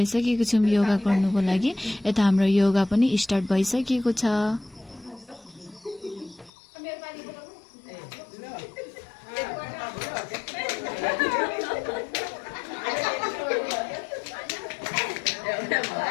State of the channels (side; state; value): right; drops out; at 6.5 s